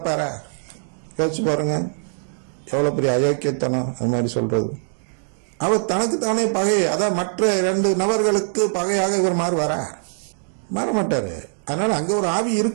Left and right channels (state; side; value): silent; left; digital silence